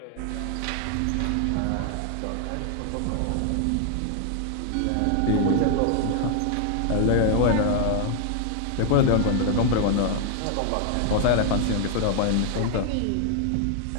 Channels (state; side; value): different; both; correlation 0.00